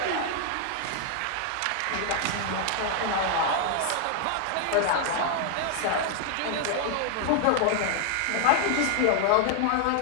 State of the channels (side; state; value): both; different; correlation 0.00